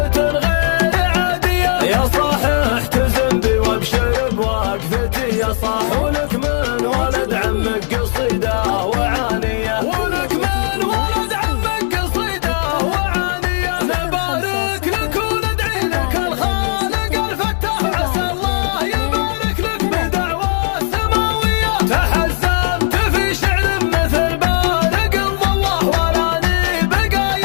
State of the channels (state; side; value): silent; right; digital silence